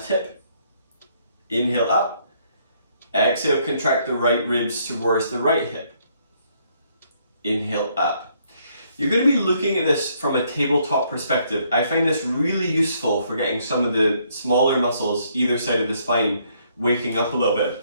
hip. Inhale up. Exhale, contract the right ribs towards the right hip. Inhale up. You're going to be looking at this from a tabletop perspective. I find this really useful for getting some of the smaller muscles either side of the spine waking up a little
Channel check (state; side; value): inverted; both; correlation -0.69